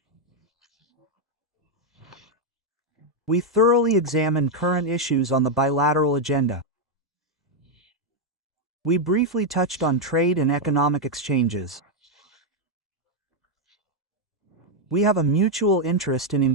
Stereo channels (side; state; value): both; normal; correlation 0.01